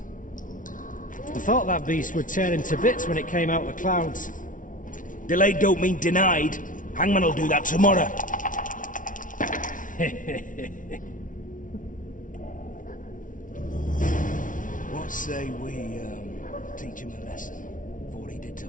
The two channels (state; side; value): late; right; 0.38 ms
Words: thought that beast would tear him to bits when it came out of the clouds. Delayed don't mean denied. Hangman'll do that tomorrow. say we, teach him a lesson for what he did to